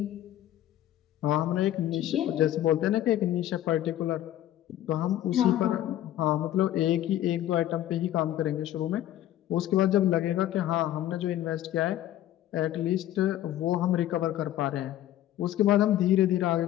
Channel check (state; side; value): quieter; right; 13.0 dB